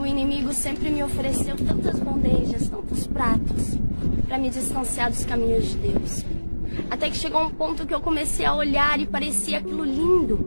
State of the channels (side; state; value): both; inverted; correlation -1.00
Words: inimigo sempre me ofereceu tantas bandejas, tantos pratos, para me distanciar dos caminhos de Deus. Até que chegou um ponto que eu comecei a olhar e parecia aquilo